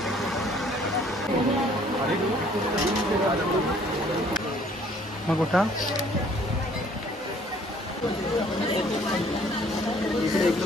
मग कुठं इकडे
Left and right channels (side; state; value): both; normal; correlation 0.58